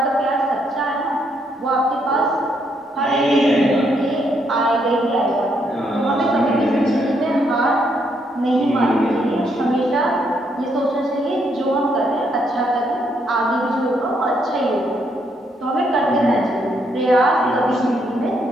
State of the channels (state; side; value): normal; both; correlation 0.74